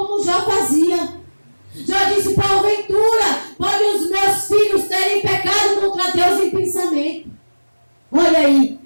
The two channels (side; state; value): both; inverted; correlation -1.00